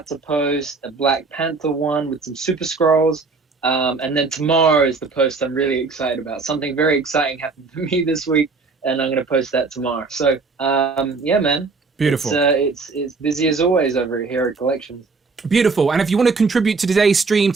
to post a Black Panther one with some Super Scrolls. And then tomorrow is the post I'm really excited about. Something very exciting happened for me this week. and I'm going to post that tomorrow. So, yeah, man. Beautiful. It's busy as always over here at Collections. Beautiful. And if you want to contribute to today's stream,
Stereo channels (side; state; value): left; quieter; 4.3 dB